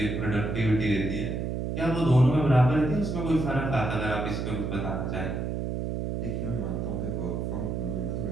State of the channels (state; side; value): noise; right; hum, 2 dB below the sound